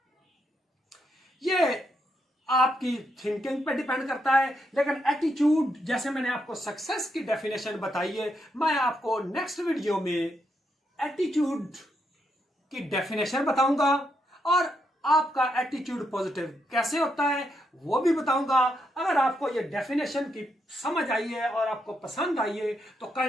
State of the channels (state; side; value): normal; both; correlation 0.79